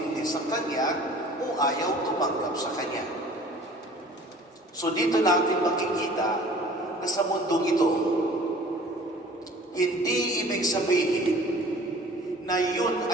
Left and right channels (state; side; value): normal; both; correlation 0.48